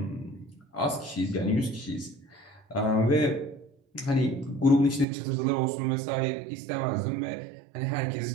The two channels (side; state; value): left; drops out; at 5.1 s